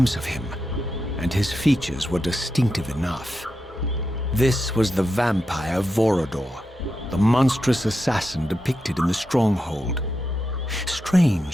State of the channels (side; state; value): both; normal; correlation 0.87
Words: of him, and his features were distinctive enough. This was the vampire Vorador, the monstrous assassin depicted in the stronghold.